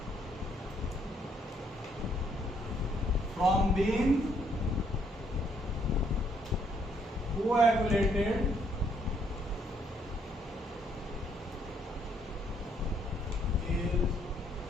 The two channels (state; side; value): normal; both; correlation 0.69